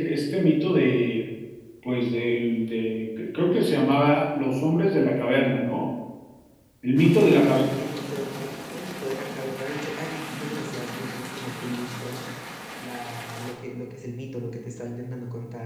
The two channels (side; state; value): both; identical; correlation 1.00